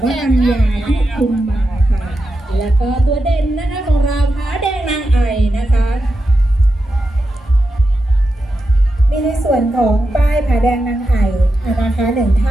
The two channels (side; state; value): both; normal; correlation 0.88